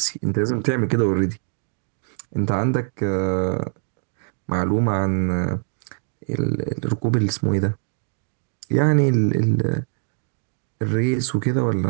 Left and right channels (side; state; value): left; silent; 57 dB below the other